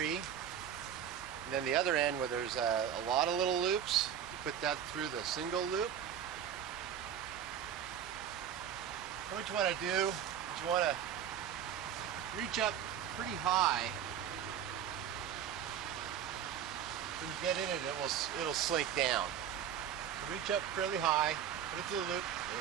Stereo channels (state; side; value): quieter; left; 9.2 dB